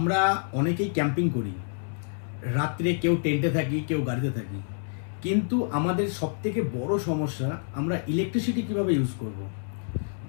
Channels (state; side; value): silent; right; 60 dB below the other